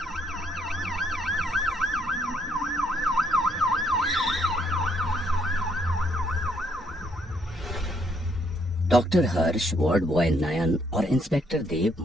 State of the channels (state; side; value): normal; both; correlation 0.70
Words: डॉक्टर हर्ष, वार्ड बॉय नयन और इंस्पेक्टर देव